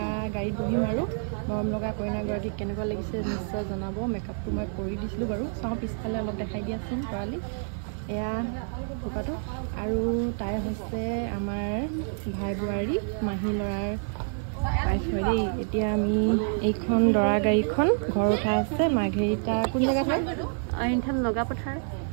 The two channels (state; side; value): silent; left; 58 dB below the other